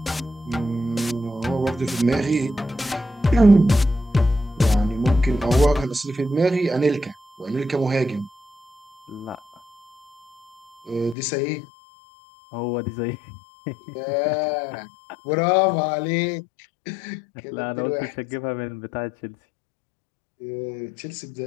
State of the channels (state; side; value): drops out; right; at 11.2 s